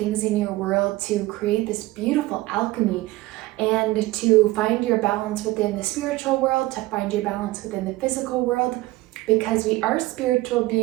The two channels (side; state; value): left; quieter; 18.8 dB